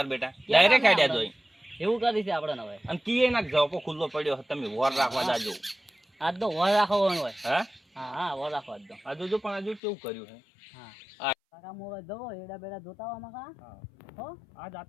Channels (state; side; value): drops out; right; at 9.8 s